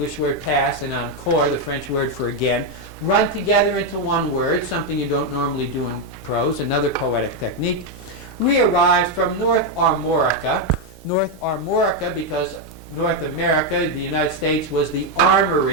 word pass, and encore, the French word for again, run together into one word, something you don't normally do in prose, another poetic technique. Re-arrived from North Armorica because North America, the United States, was the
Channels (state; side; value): normal; both; correlation 0.03